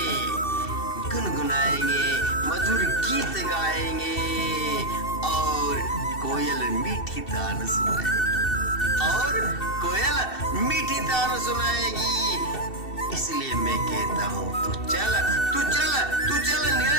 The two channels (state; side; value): late; right; 2.7 ms